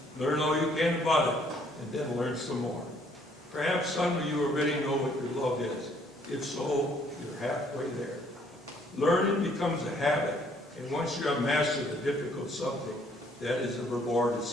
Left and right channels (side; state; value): both; normal; correlation 0.64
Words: learn all you can about it, and then learn some more. Perhaps some of you already know what your love is. If so, you're halfway there. Learning becomes a habit, and once you have mastered a difficult subject, that is a reward